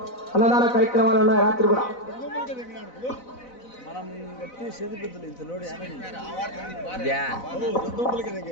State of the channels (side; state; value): right; late; 4.0 ms